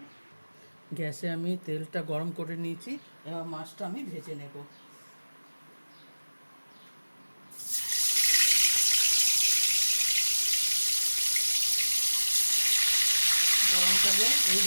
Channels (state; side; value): inverted; both; correlation -1.00